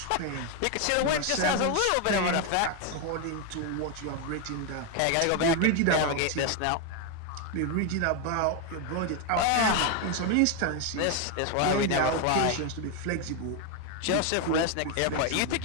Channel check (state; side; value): different; both; correlation 0.01